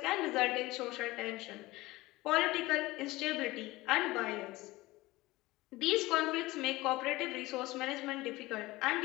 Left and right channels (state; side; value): quieter; right; 19.7 dB